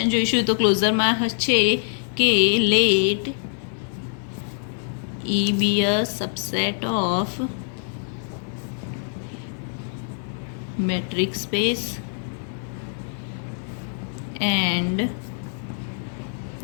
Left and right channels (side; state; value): right; silent; digital silence